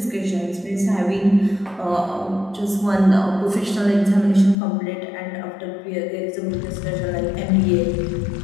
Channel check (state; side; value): drops out; right; at 4.5 s